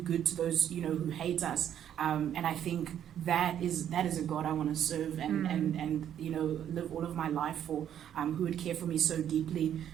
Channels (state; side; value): quieter; left; 10.0 dB